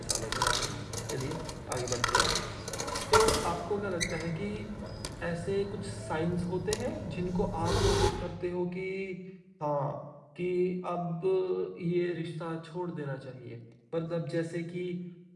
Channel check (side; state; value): both; identical; correlation 1.00